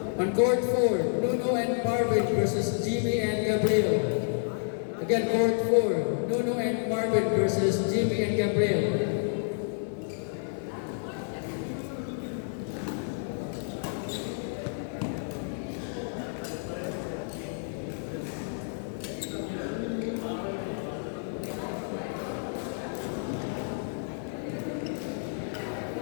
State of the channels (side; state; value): right; silent; 58 dB below the other